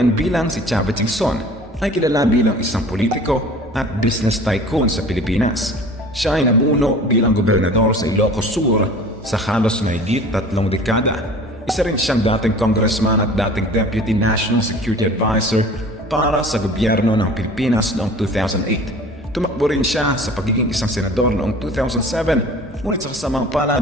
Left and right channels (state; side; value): normal; both; correlation 0.43